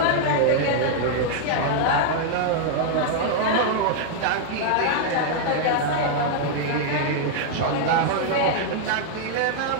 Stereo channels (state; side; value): different; both; correlation -0.01